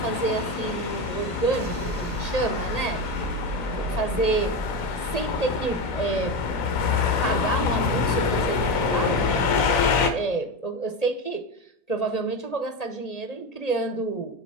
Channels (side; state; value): right; late; 1.8 ms